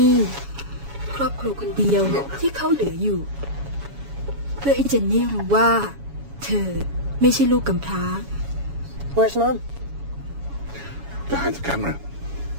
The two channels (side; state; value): left; late; 7.1 ms